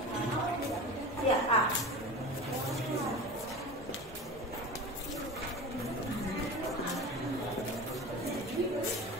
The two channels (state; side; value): noise; left; hum, 22 dB below the sound